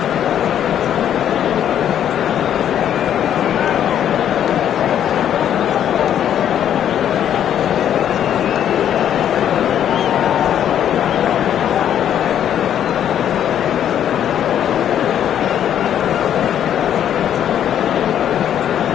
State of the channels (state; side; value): quieter; right; 10.0 dB